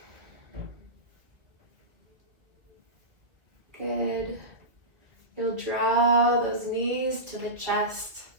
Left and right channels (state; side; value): late; left; 2.0 ms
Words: Good. You'll draw those knees to the chest.